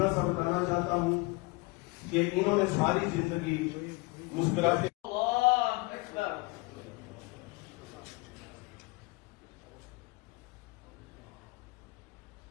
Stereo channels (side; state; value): right; quieter; 24.9 dB